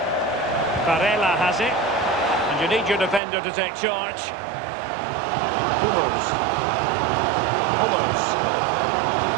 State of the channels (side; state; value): left; drops out; at 3.2 s